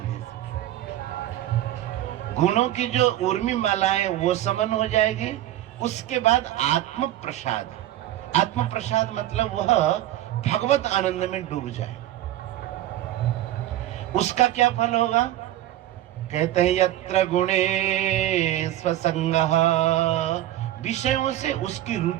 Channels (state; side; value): quieter; left; 13.7 dB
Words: से। गुणों की जो उर्मी माला है वो समन हो जाएगी। उसके बाद आत्म प्रसाद, आत्म प्रसाद मतलब वह भगवत आनंद में डूब जाए। उसका क्या फल होगा? कहते हैं यत्र गुणे स्वसंगः, विषयों से उसकी